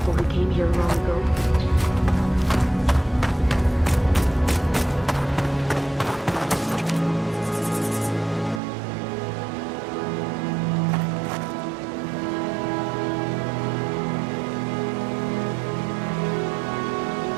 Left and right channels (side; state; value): left; drops out; at 8.6 s